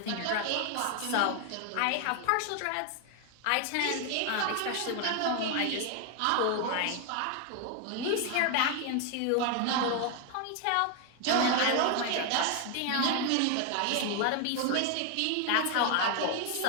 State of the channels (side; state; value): both; different; correlation 0.01